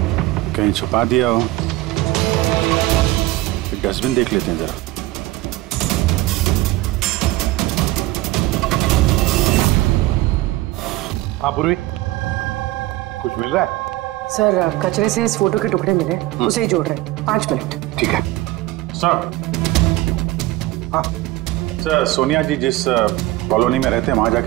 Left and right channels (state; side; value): quieter; left; 18.0 dB